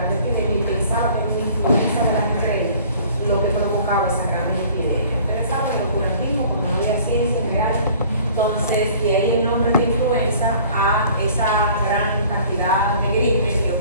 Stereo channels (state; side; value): inverted; both; correlation -0.51